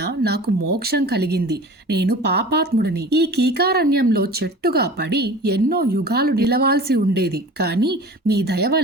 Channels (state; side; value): normal; both; correlation 0.40